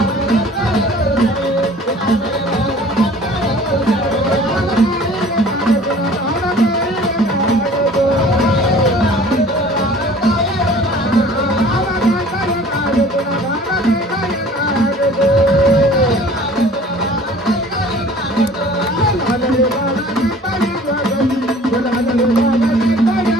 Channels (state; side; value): normal; both; correlation 0.48